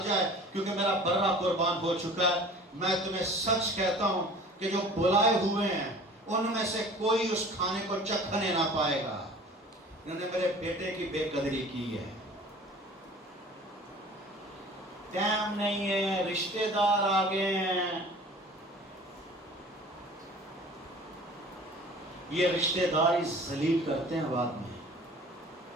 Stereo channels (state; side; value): normal; both; correlation 0.45